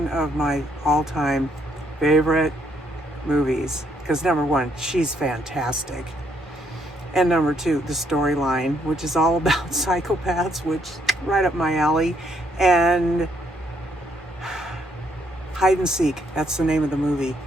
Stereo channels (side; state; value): both; normal; correlation 0.71